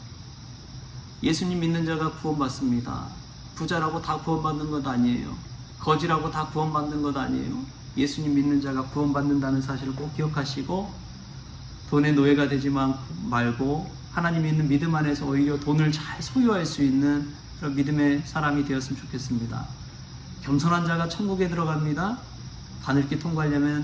예수님 믿는 자가 구원받습니다. 부자라고 다 구원받는 것 아니에요. 거지라고 다 구원받는 것 아니에요. 예수님 믿는 자가 구원받는다는 사실을 꼭 기억하시고, 돈의 노예가 되지 말고 하나님 있는 믿음 안에서 오히려 돈을 잘 소유할 수 있는 그런 믿음의 사람이 되었으면 좋겠습니다. 겸손한 자가 천국에 들어갑니다. 바늘길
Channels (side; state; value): both; identical; correlation 1.00